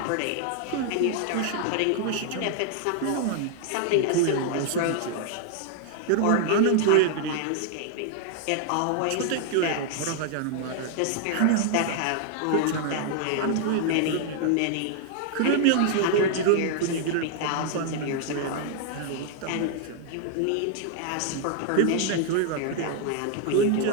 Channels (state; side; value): different; both; correlation 0.00